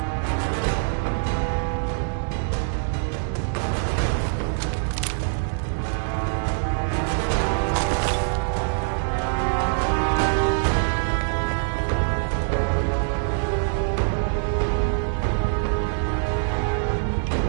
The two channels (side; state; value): left; silent; digital silence